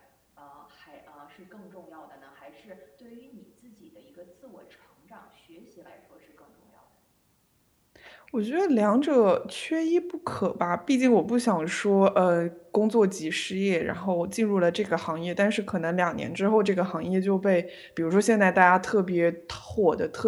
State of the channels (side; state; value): both; identical; correlation 1.00